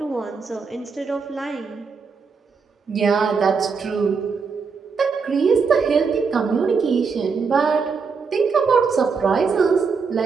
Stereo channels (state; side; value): quieter; left; 5.2 dB